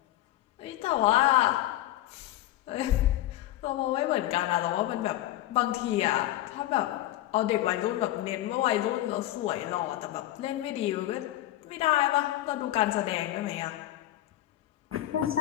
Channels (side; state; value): right; quieter; 14.7 dB